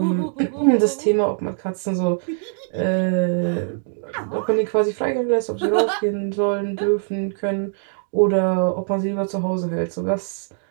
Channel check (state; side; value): silent; left; digital silence